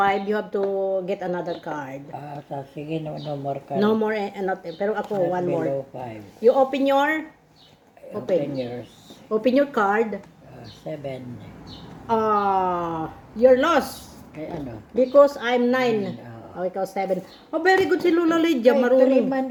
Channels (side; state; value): both; identical; correlation 1.00